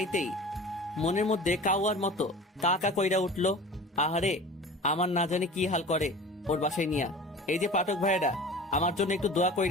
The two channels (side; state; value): both; normal; correlation 0.39